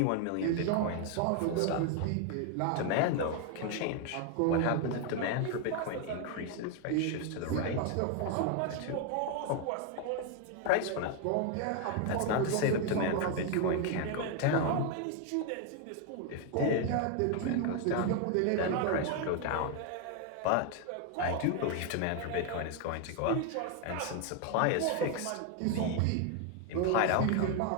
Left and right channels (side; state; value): both; different; correlation 0.01